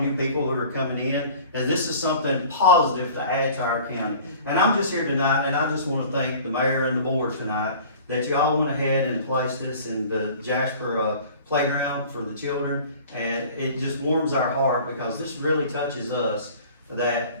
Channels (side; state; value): both; inverted; correlation -0.45